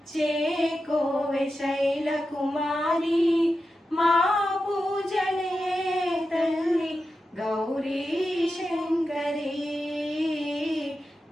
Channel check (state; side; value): normal; both; correlation 0.90